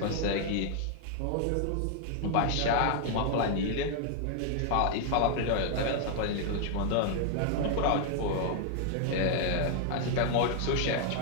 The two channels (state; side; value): different; both; correlation 0.00